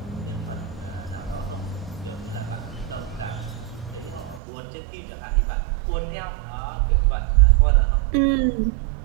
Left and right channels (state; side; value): drops out; left; at 4.4 s